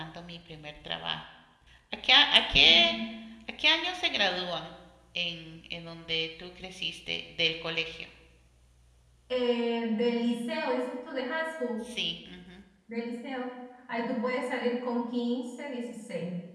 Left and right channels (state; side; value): identical; both; correlation 1.00